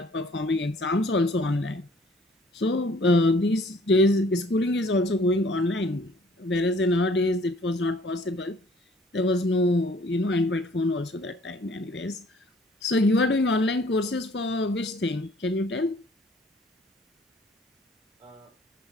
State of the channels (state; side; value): normal; both; correlation 0.57